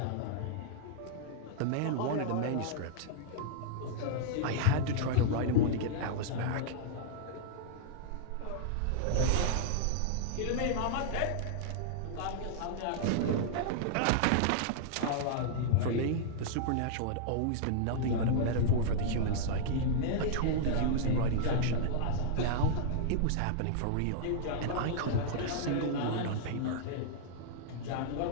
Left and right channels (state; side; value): different; both; correlation -0.01